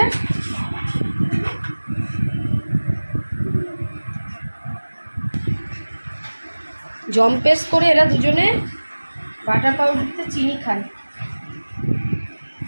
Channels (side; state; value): both; inverted; correlation -1.00